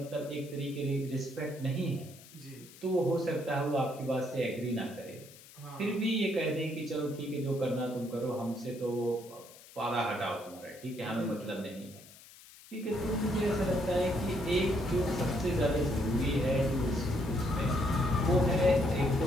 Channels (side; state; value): left; noise; hiss, 21 dB below the sound